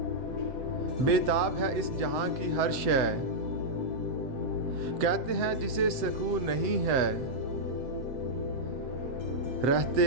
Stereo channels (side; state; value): left; late; 7.7 ms